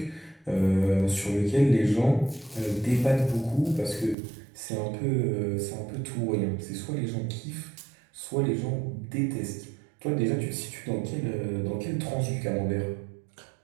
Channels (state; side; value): drops out; left; at 4.2 s